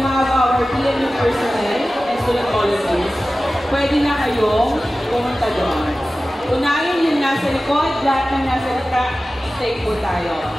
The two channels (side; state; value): both; normal; correlation 0.96